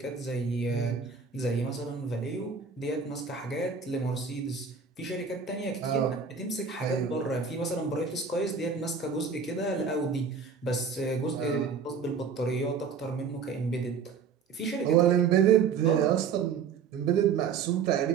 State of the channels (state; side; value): quieter; left; 5.9 dB